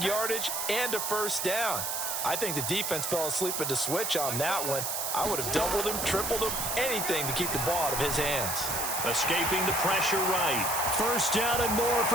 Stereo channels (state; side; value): noise; right; hiss, 1 dB below the sound